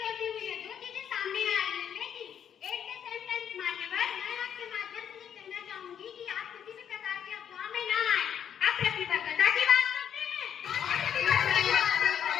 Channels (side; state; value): right; quieter; 8.8 dB